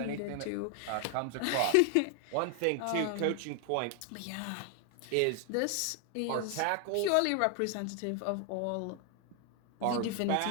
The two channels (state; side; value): different; both; correlation 0.00